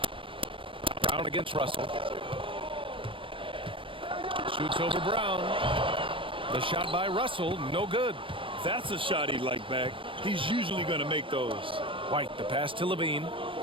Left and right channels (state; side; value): late; left; 0.25 ms